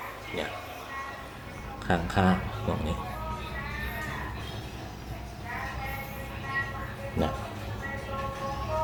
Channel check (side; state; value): both; identical; correlation 1.00